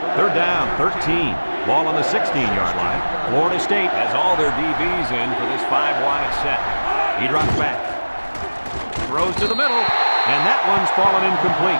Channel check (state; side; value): inverted; both; correlation -1.00